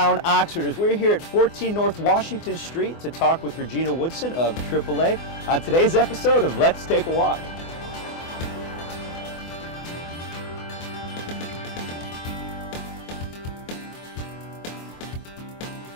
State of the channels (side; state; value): right; late; 24 ms